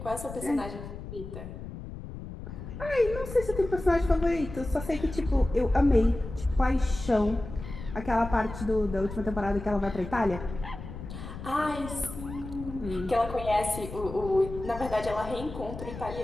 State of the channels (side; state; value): left; noise; rumble, 11 dB below the sound